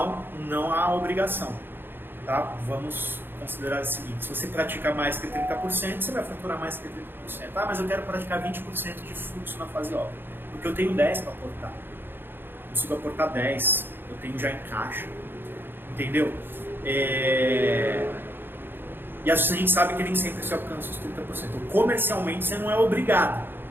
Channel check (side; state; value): left; late; 0.10 ms